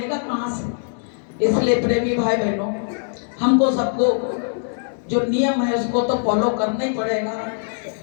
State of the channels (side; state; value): right; silent; digital silence